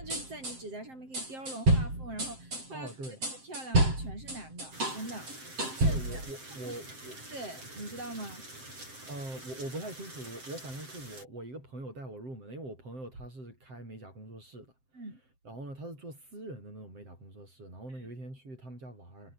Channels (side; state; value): left; late; 7.7 ms